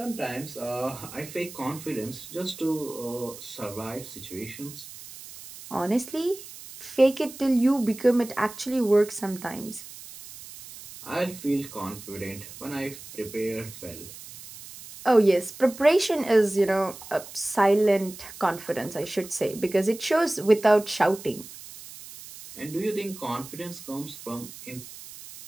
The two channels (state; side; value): noise; right; hiss, 15 dB below the sound